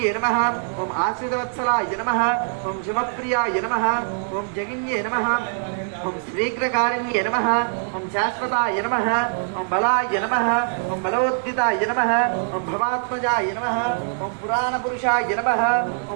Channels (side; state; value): left; silent; 64 dB below the other